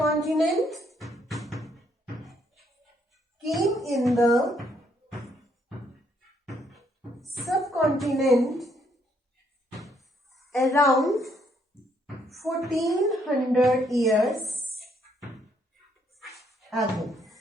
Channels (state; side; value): normal; both; correlation 0.70